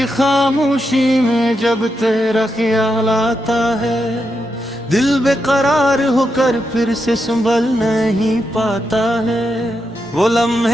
खामोशी में जब तेरा ख्याल आता है, दिल बेकरार होकर फिर से संभल नहीं पाता है। वो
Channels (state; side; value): normal; both; correlation 0.84